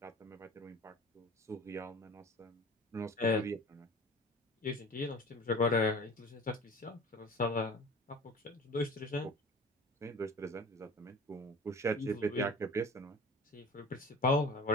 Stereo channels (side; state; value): both; normal; correlation 0.40